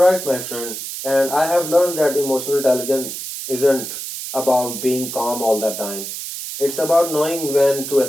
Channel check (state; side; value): noise; right; hiss, 7 dB below the sound